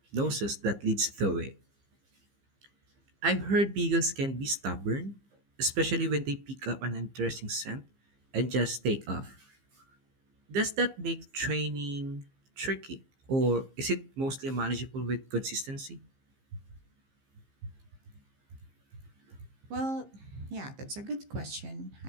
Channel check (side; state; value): left; late; 15 ms